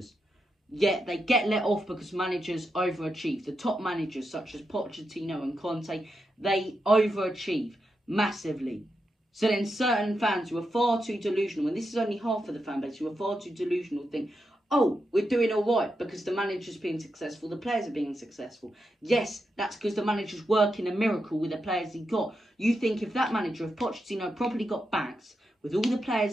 Yet they get let off because managers overachieve. The top managers such as Pochettino and Conte, they overachieve massively. So then certain fans who are far too delusional, and this is only half of the fan base, who are far too delusional, think, oh, we're doing all right because the manager's being successful, the players are being successful. Yes, that's because the manager's working a miracle with the players he got. You think if that manager, if Pochettino properly got backed with all the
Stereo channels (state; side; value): normal; both; correlation 0.86